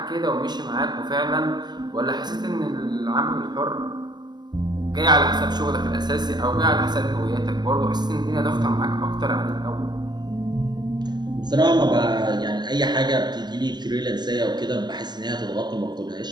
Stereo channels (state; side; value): late; left; 0.21 ms